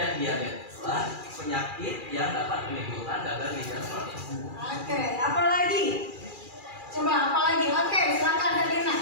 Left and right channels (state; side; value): late; left; 2.4 ms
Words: diabeteslah penyakit yang dapat menimbulkan gagal ginjal kronis. Oke, apa lagi? Coba apa lagi? Oke, silakan Davina.